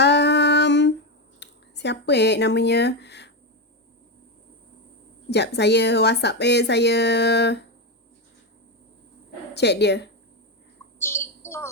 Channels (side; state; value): both; normal; correlation 0.11